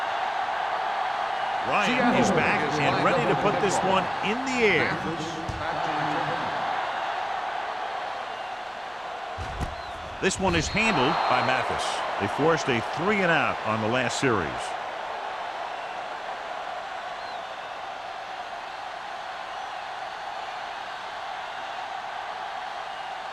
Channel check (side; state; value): both; identical; correlation 1.00